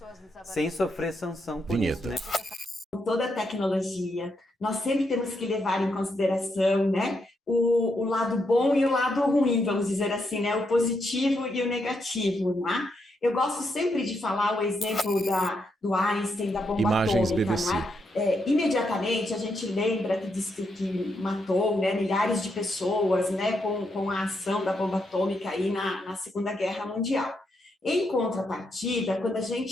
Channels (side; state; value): both; normal; correlation 0.80